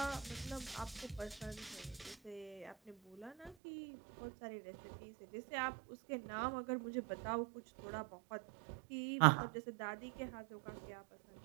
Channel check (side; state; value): left; drops out; at 3.6 s